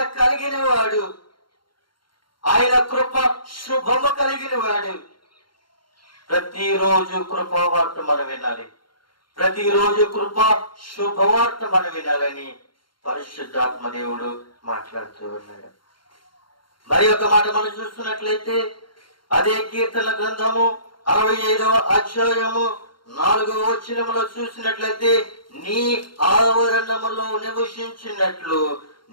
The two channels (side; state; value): right; late; 0.73 ms